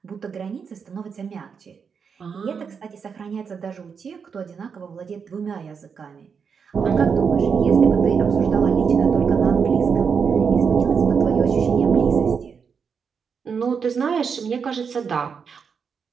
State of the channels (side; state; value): left; quieter; 6.2 dB